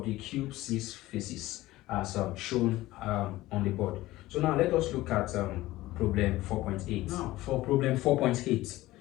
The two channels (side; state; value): right; quieter; 17.4 dB